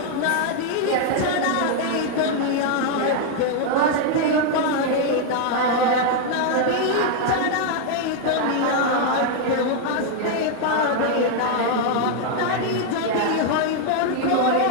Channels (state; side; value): different; both; correlation 0.00